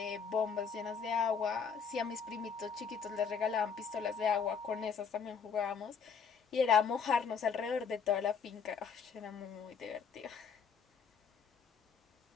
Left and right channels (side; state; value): right; quieter; 6.2 dB